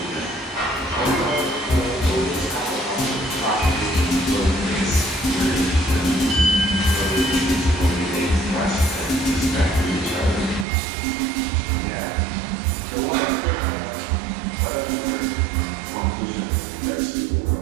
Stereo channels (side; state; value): left; drops out; at 10.7 s